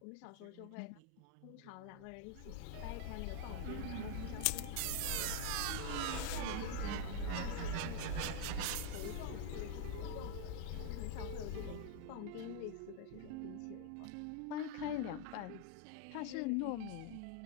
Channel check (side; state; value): both; different; correlation 0.00